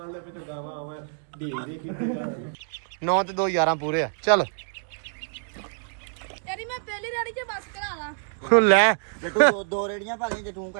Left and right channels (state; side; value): silent; left; digital silence